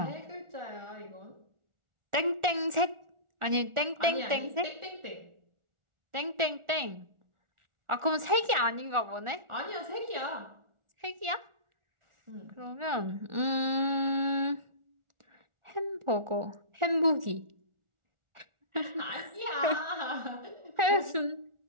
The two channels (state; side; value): late; left; 1.4 ms